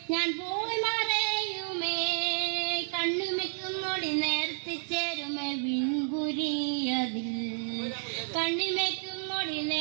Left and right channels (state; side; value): silent; left; 57 dB below the other